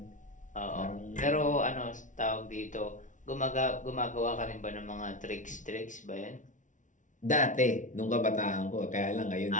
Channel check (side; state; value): right; late; 0.37 ms